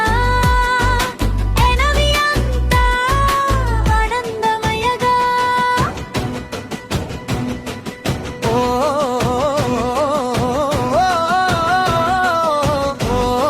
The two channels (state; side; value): identical; both; correlation 1.00